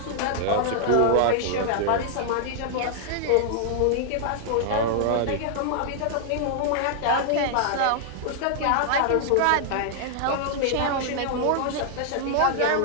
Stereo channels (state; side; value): different; both; correlation -0.01